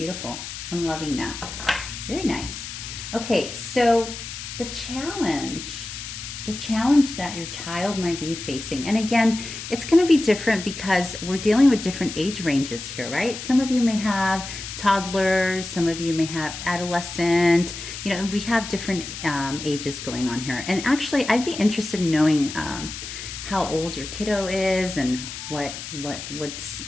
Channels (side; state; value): left; noise; hiss, 9 dB below the sound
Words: I'm loving that. Very nice. Okay, so the challenge that your child might be facing, and again, it's going to be different because we're dealing with different age ranges here, right? Some of you may have toddlers, some of you may have adolescent, you know, we have different ages going on here. And actually, I'd be interested in knowing how old your kiddo is and what's